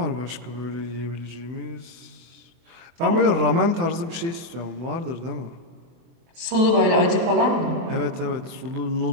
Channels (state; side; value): late; left; 24 ms